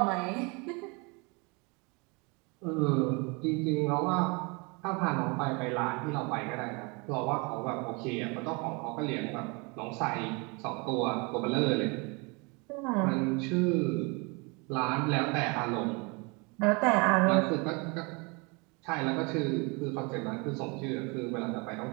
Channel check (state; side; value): quieter; left; 29.9 dB